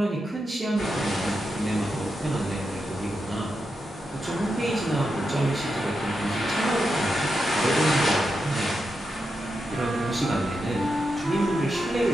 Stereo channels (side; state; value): both; normal; correlation 0.87